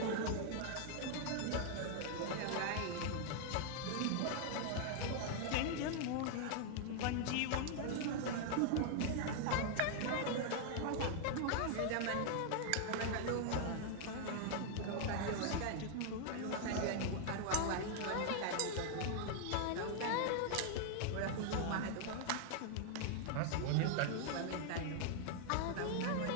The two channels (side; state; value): both; different; correlation 0.00